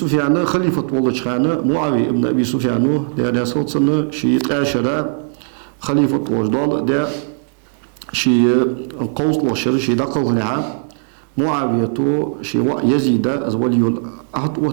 خليفة والله خانة معاوية ابن أبي سفيان ده صوت سنة شيء عشرة خليفة وجدال ده شيء قوس وشر شيء دقل نعم معاوية تو شيء يزيد از ولي العهد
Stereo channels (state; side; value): silent; left; digital silence